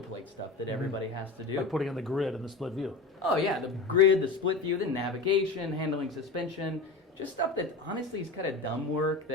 stuff that everybody has to do. Like putting in the grid and the split view. Oh yeah, the grid, the split view, the navigation, handling suspension, just stuff that honestly is kind of dumb work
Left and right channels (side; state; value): right; quieter; 3.7 dB